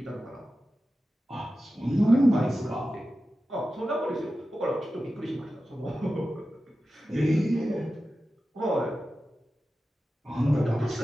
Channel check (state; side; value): normal; both; correlation 0.93